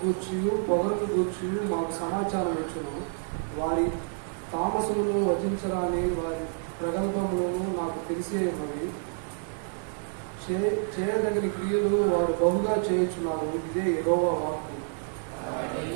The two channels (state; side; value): silent; left; 59 dB below the other